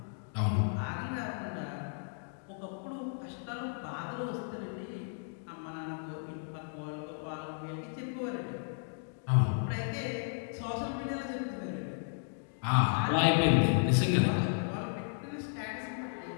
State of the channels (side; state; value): right; silent; digital silence